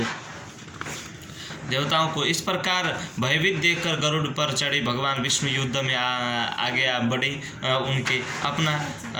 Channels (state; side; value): identical; both; correlation 1.00